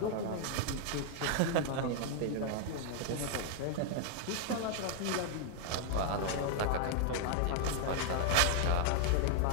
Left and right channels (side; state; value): both; different; correlation 0.00